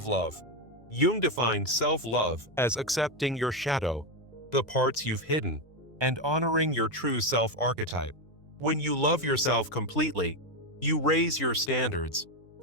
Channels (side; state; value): both; normal; correlation 0.08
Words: love. Jung defined self-love as accepting your shadow, the parts you've hidden, and honoring your true self-archetype. When you love yourself completely, you raise your standards,